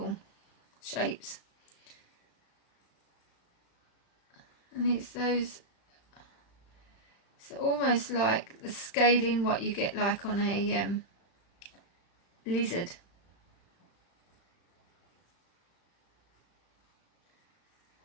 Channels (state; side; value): late; right; 35 ms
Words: shapes. And it's those, it's almost like the scaling what you get like on a lizard.